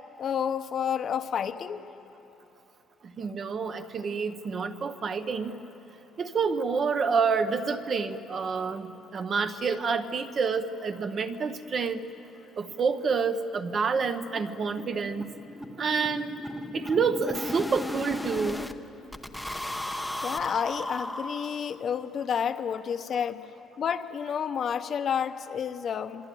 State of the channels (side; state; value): both; normal; correlation 0.72